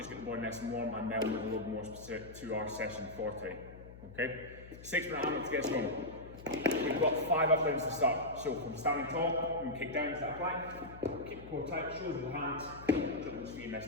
get the body nice and warm, and then we'll move a little more specific to our session for today. Okay, 6-minute AMRAP to get us going. We've got 5 up downs to start. So from standing tall, we can kick down to that plank, keep the core tight, shoulders with the hands, jump those feet, nice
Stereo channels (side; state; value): left; noise; hum, 16 dB below the sound